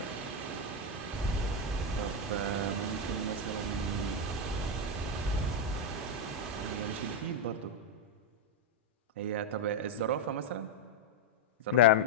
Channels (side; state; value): both; normal; correlation 0.02